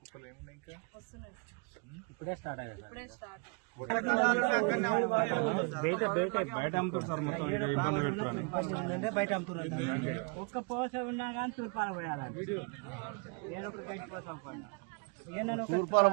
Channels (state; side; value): quieter; left; 34.7 dB